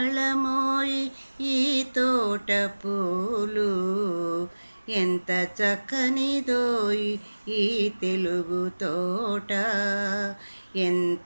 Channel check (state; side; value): inverted; both; correlation -1.00